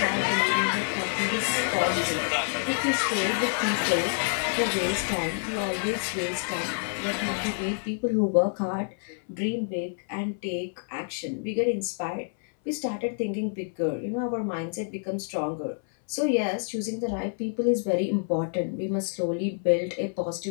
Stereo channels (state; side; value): silent; right; 60 dB below the other